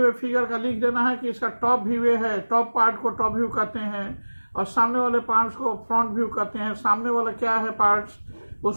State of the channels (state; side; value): inverted; both; correlation -1.00